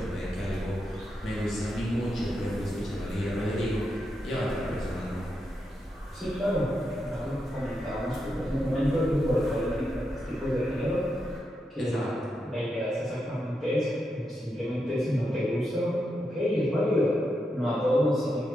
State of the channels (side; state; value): both; normal; correlation 0.84